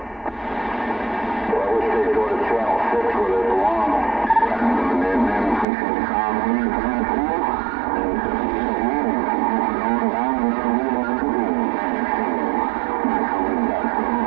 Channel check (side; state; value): left; drops out; at 5.7 s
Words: Well, I wish they'd go to Channel 6 where they belong.